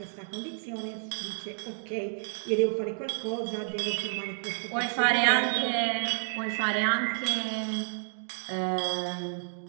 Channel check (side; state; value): left; silent; digital silence